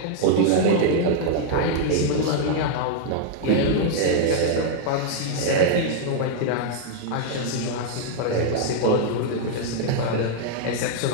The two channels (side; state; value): both; different; correlation -0.01